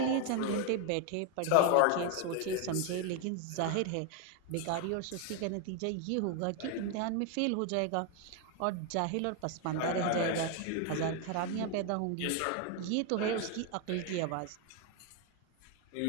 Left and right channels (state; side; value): different; both; correlation 0.01